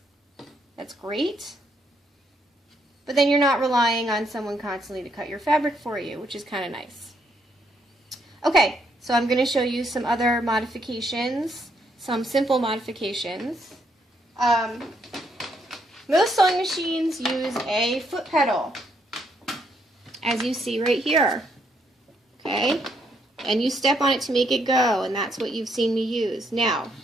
that's great. But then you're not relying on someone constantly to cut your fabric for you, which is kind of nice. Okay, so I'm going to show you some other modifications, some simple modifications. Most sewing machines use a foot pedal, as you see right here. Okay, and you step on it to make it go, and that's what you've seen me use. Now,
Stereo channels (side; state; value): both; normal; correlation 0.74